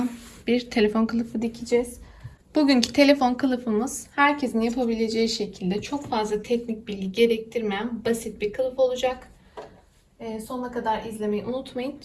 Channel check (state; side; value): identical; both; correlation 1.00